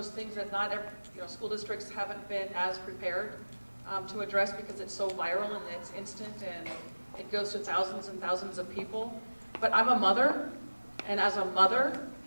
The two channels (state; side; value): inverted; both; correlation -1.00